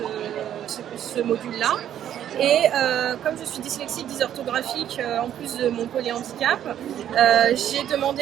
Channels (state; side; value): quieter; left; 10.6 dB